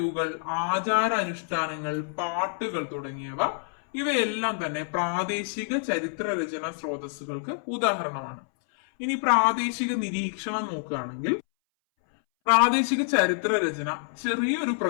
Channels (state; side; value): silent; right; 60 dB below the other